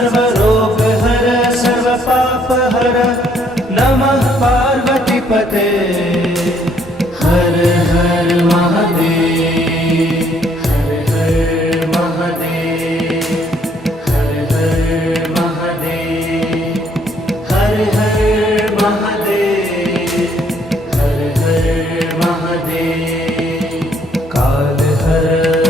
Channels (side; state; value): both; normal; correlation 0.67